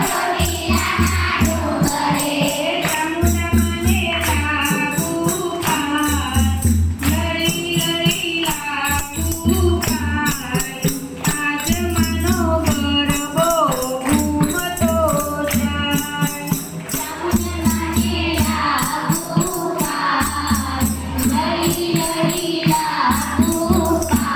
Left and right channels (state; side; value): identical; both; correlation 1.00